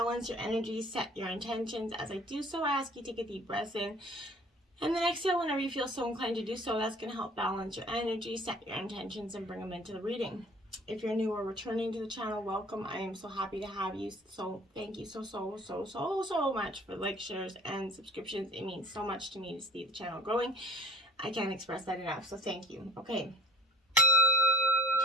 your energy, set your intentions. As I do so, I ask you to take a deep breath in. And then exhale whenever you feel so inclined to do so. That's going to help balance your energy, set your intentions, and bring them into the reading. If you're new or returning to the channel, welcome. I am so happy to have you. So thank you so much for likes, shares, and subscriptions. It means so much to me to see the channel growing. I can't express that enough, so thank you. Okay.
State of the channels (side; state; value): both; normal; correlation 0.47